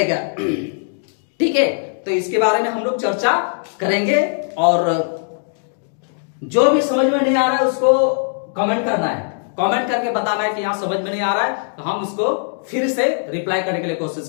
ठीक है। तो इसके बारे में हम लोग चर्चा करेंगे और जो भी समझ में नहीं आ रहा है उसको कमेंट करना है, कमेंट करके बताना है कि यहां समझ में नहीं आ रहा है, तो हम उसको फिर से रिप्लाई करने के लिए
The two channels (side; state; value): right; silent; digital silence